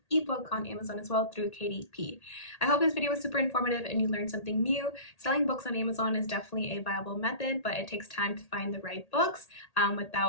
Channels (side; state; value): right; late; 1.8 ms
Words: ebook on Amazon as well through KDP. I hope this video was super informative and you learned something new. Selling books on Amazon is definitely a viable method, but it takes time to find the right books